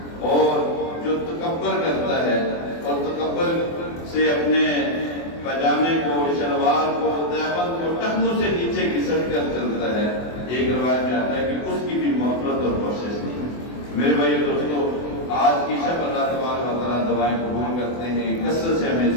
اور جو تکبر کرتا ہے اور تکبر سے اپنے پاجامے کو، شلوار کو، دیوبند کو ٹخنوں سے نیچے گھسٹ کر چلتا ہے، ایک روایت میں آتا ہے کہ اس کی بھی مغفرت اور بخشش نہیں۔ میرے بھائیو دوستو، آج کی شب اللہ تبارک و تعالیٰ دعائیں قبول کرتے ہیں، کثرت سے ہمیں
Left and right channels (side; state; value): right; late; 24 ms